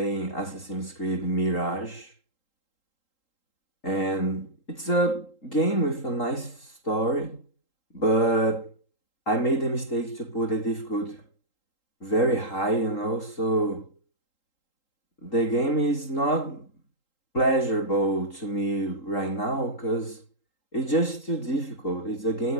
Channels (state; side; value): late; right; 3.8 ms